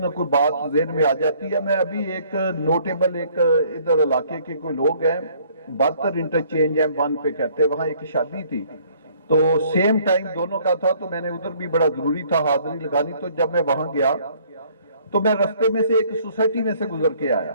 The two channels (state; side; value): inverted; both; correlation -0.60